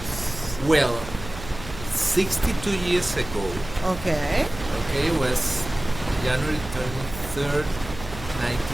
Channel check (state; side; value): noise; right; hum, 12 dB below the sound